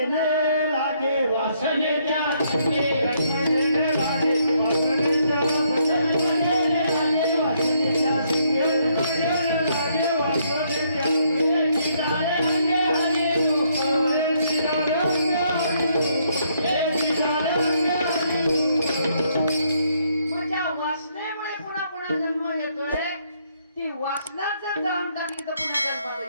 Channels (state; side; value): inverted; both; correlation -0.71